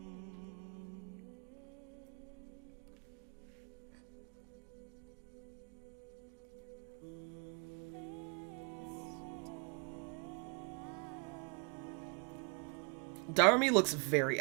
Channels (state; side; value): quieter; left; 36.2 dB